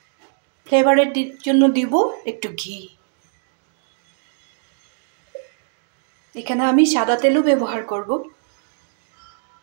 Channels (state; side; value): silent; left; digital silence